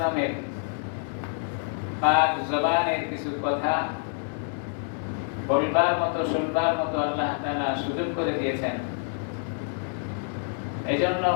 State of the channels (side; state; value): right; silent; 60 dB below the other